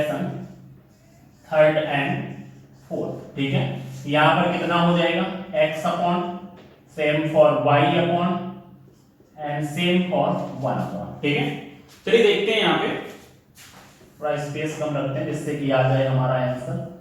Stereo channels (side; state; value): both; identical; correlation 1.00